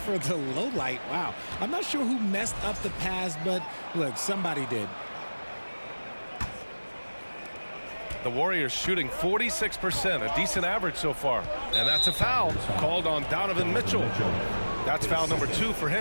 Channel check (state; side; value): inverted; both; correlation -1.00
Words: the low light. Wow. I'm not sure who messed up the pass, but look, somebody did. The Warriors shooting 46%, a decent average so far. And that's a foul called on Donovan Mitchell. That's foul number 2 for